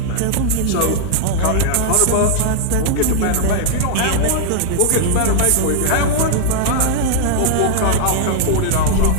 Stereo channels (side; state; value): both; different; correlation -0.01